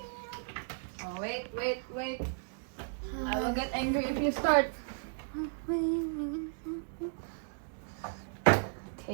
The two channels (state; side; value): silent; left; digital silence